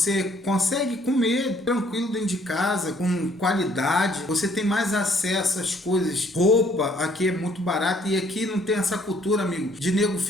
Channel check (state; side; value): normal; both; correlation 0.63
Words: consegue comer tranquilo dentro de casa, com qualidade, você tem mais acesso às coisas. Roupa aqui é muito barata e aqui não tem essa cultura, amigo, de nego